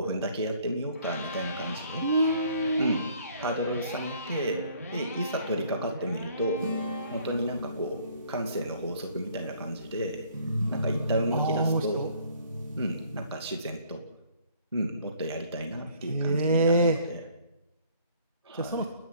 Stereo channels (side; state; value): both; inverted; correlation -0.59